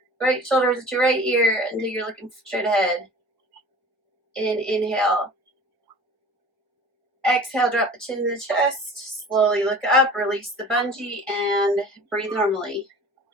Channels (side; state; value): both; normal; correlation 0.42